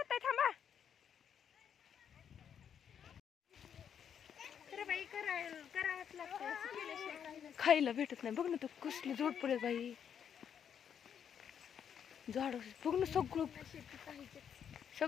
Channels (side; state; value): right; quieter; 8.2 dB